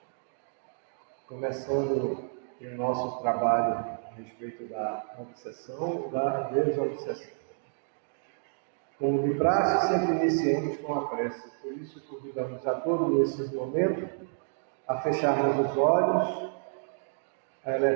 começando o nosso trabalho a respeito da obsessão e da desobsessão. Como de praxe, sempre iniciamos com a prece, por isso convidamos a todos nesse momento a fecharmos os olhos, a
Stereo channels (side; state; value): left; silent; digital silence